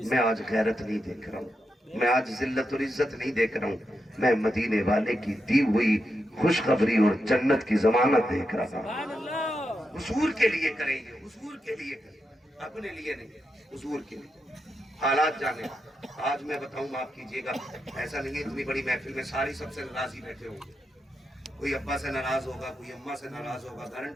میں آج غیرت نہیں دیکھ رہا ہوں، میں آج ذلت اور عزت نہیں دیکھ رہا ہوں، میں مدینے والے کی دی ہوئی خوشخبری اور جنت کی ضمانت دیکھ رہا ہوں۔ حضور کے لیے کریں گے، حضور کے لیے کریں، اپنے لیے نہیں، حضور کے لیے۔ حالات جانے، آج میں بتاؤں معاف کیجئے گا، ایسا نہیں ہے اتنی بڑی محفل میں ساری سب سے ناراضی بیٹھے ہوں گے، کوئی ابا سے ناراض ہوگا، کوئی اماں سے ناراض ہوگا،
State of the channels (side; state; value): both; normal; correlation 0.86